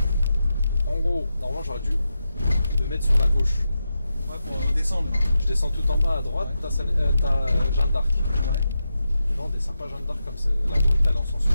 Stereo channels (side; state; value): both; inverted; correlation -0.88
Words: En gros, normalement j'aurais dû me mettre sur la gauche. Ouais, pour descendre. Je descends tout en bas à droite, Ouais. t'as Jeanne d'Arc. Ouais. Non, on descend pas Jeanne d'Arc comme c'est la route elle en sens